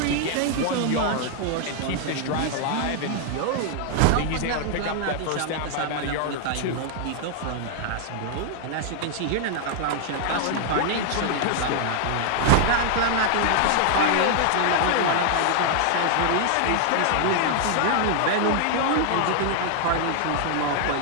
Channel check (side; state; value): both; different; correlation 0.00